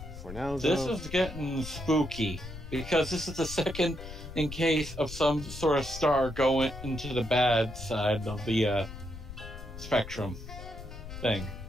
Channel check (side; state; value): left; noise; rumble, 11 dB below the sound